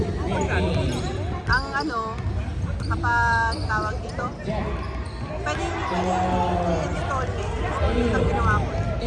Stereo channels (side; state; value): both; identical; correlation 1.00